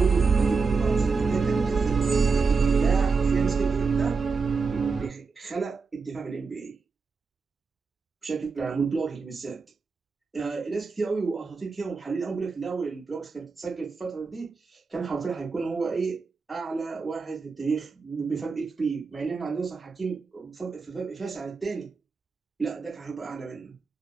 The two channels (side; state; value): left; quieter; 4.7 dB